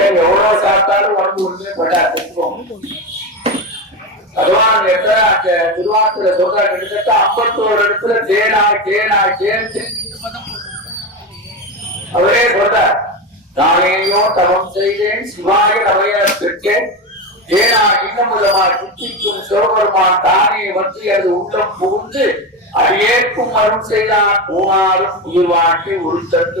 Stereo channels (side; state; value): both; normal; correlation 0.17